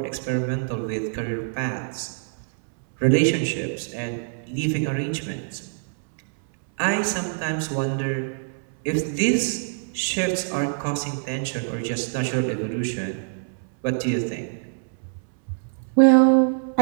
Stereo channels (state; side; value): silent; left; 62 dB below the other